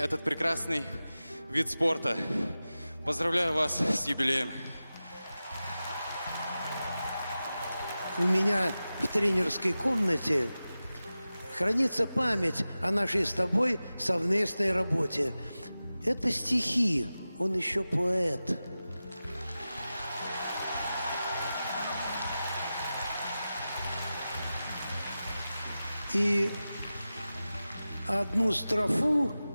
прекрасный вид спорта. Поздравляю вас с юбилеем. У меня в тренерской комнате хранится память о нашей с тобой совместной работе. Это стихи, он еще поэт. И одну строфу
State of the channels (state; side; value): inverted; both; correlation -0.94